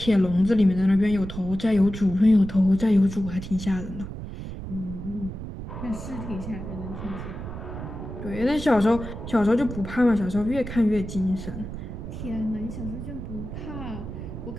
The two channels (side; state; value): right; noise; rumble, 9 dB below the sound